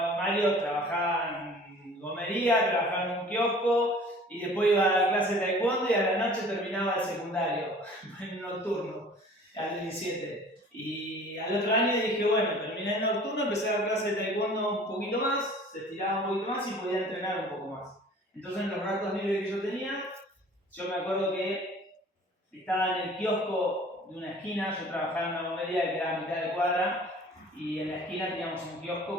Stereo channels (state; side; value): normal; both; correlation 0.48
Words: Mario, trabajaba en gomería, trabajaba en un kiosco y después iba a la clase de taekwondo y a la noche terminaba el secundario, en un nocturno, al 17. Y al otro año dije, bueno, terminé el nocturno, empecé a dar clase de taekwondo un poquito más, se estiraba un poquito más y podía entrenar un poco más. Entonces en los ratos libres que yo tenía, yo me acuerdo que estaba en el kiosco de una esquina, yo trabajaba en una gomería que quedaba a mitad de cuadra, y en la esquina teníamos un